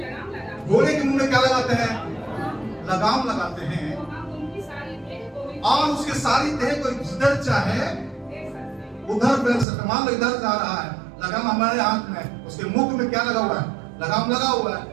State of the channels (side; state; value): left; drops out; at 9.7 s